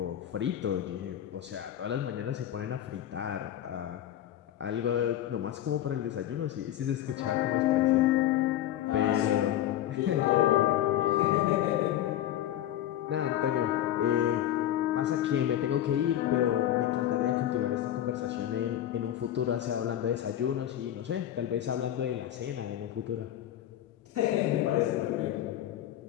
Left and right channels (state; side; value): quieter; right; 12.1 dB